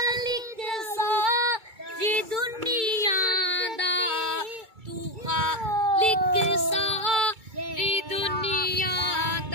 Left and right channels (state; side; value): late; left; 2.2 ms